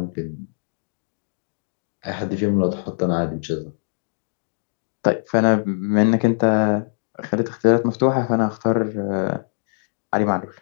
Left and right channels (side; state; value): right; silent; digital silence